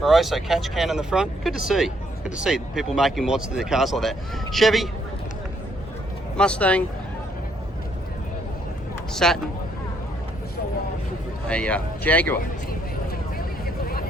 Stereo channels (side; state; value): both; normal; correlation 0.70